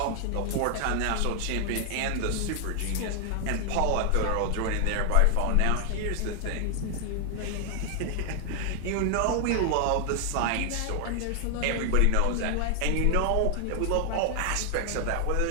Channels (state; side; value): different; both; correlation 0.00